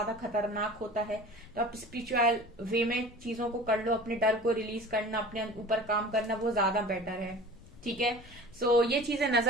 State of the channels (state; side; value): noise; left; rumble, 21 dB below the sound